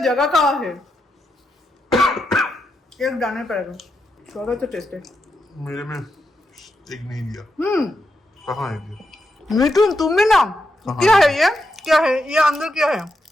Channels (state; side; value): normal; both; correlation 0.85